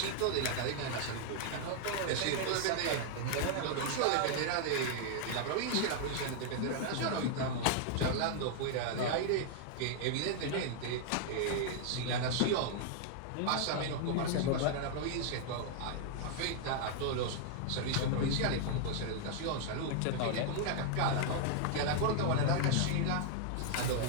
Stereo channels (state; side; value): different; both; correlation 0.00